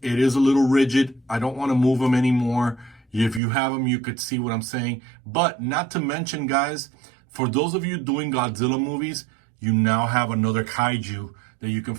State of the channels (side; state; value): left; drops out; at 3.4 s